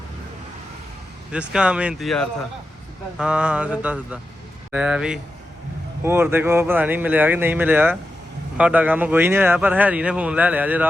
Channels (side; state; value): both; normal; correlation 0.90